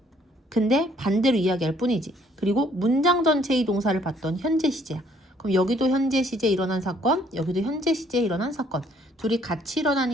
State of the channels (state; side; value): normal; both; correlation 0.63